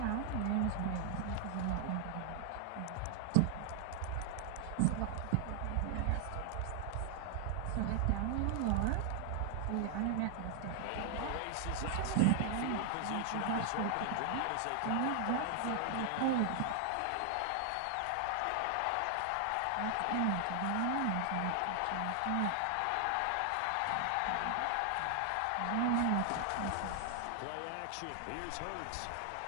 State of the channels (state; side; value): different; both; correlation 0.00